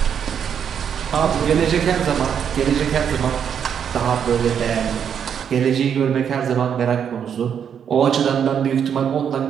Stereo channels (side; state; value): left; quieter; 8.1 dB